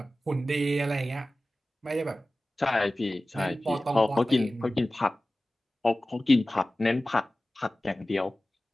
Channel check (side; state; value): both; normal; correlation 0.96